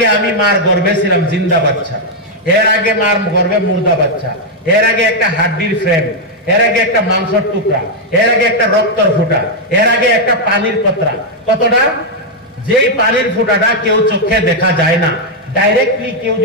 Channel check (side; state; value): both; normal; correlation -0.01